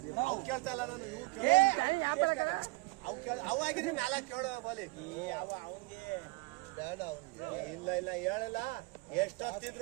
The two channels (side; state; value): left; quieter; 23.8 dB